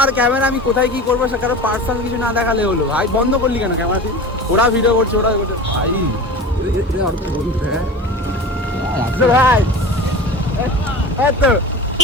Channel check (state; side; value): normal; both; correlation 0.33